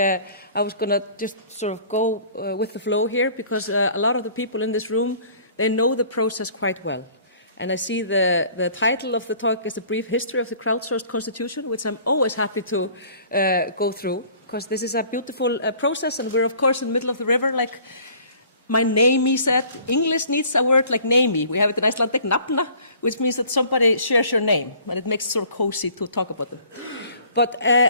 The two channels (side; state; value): both; inverted; correlation -0.52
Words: was going to just sort of go with the flow here because a lot of the people in this room, they know the process quite well. And I see the title of the talk is A Brief History of the Crowdsourced Constitution, which I'm always happy to go through, because this is a beautiful process, and we're, of course, in the middle of the river, like my namey said. English needs a word like namey. We have it in Icelandic, nafna, which means that somebody shares your name, and it makes it sort of cozy to talk about them. But